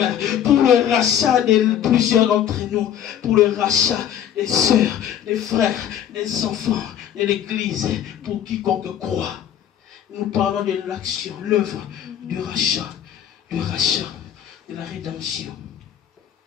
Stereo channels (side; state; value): right; quieter; 9.9 dB